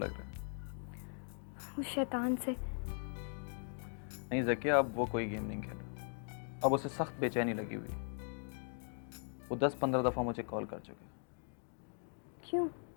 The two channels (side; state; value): right; silent; 51 dB below the other